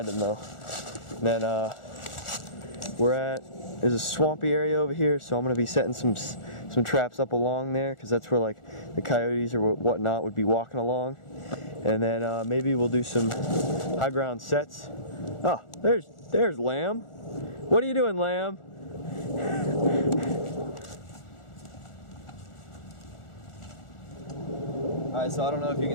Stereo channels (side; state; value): right; late; 1.4 ms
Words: him though. And then there's a swampy area over here, so I'm going to be setting some traps up along there, because that's where like the coyotes or whatnot would be walking along. And then maybe we'll do some high ground sets. Oh, there's Lamb. What are you doing, Lamb? Alright, so I don't know if you